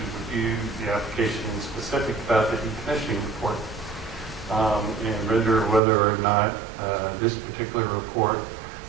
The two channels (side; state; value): left; drops out; at 5.8 s